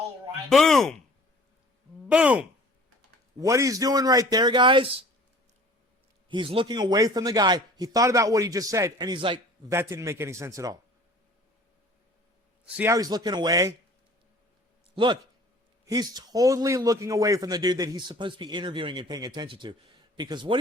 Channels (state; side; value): normal; both; correlation 0.48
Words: right. Boom! Boom! What he's doing right there, guys, he's looking away from the guy. He thought about what he just said, and he's like, that didn't make any sense at all. See how he's looking away? Look, he's totally looking away from the dude that he's supposed to be interviewing and paying attention to. Because what